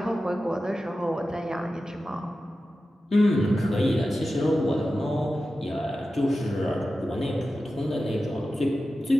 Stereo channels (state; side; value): normal; both; correlation 0.93